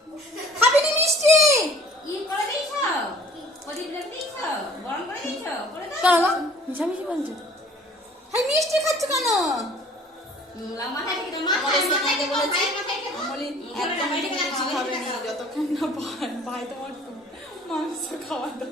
খাবি নি মিষ্টি ই করে দিছ প্রদীপ রেখে দিছ গরম করে দিছ করে দাও কেন মিশামিশি বলছো হাই মিষ্টি খাচ্ছ কেন মাথায় থেকে মাথায় বলেছি বলি একদম মিষ্টি খাবে না যতক্ষণ না ভাই তোমার মাংস খাওয়া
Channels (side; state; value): both; normal; correlation 0.51